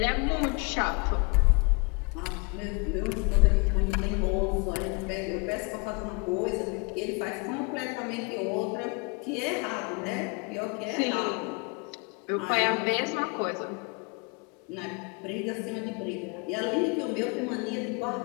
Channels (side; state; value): right; quieter; 31.7 dB